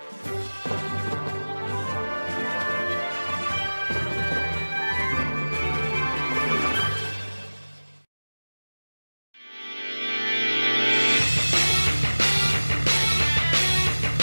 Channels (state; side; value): inverted; both; correlation -1.00